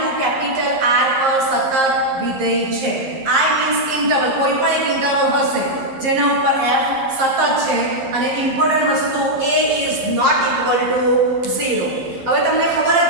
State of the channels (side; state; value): left; late; 11 ms